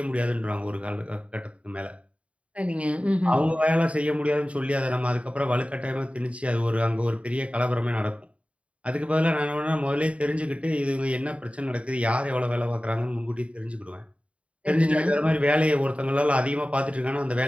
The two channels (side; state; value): left; late; 0.063 ms